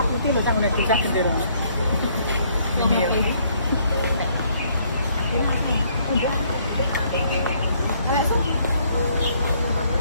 ko tilo, ako nagtisak ka din.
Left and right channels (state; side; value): inverted; both; correlation -0.66